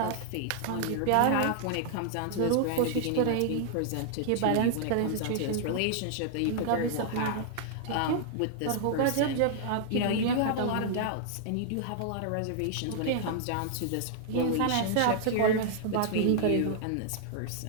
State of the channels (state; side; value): different; both; correlation 0.00